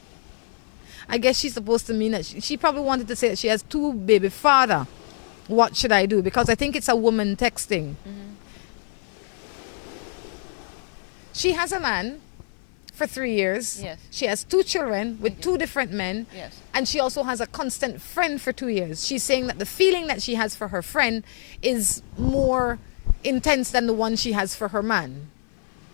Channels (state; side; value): silent; right; 56 dB below the other